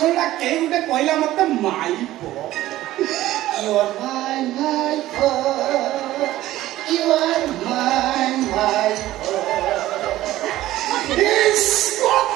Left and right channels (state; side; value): quieter; left; 15.2 dB